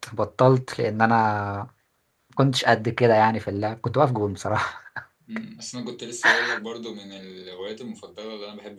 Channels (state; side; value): identical; both; correlation 1.00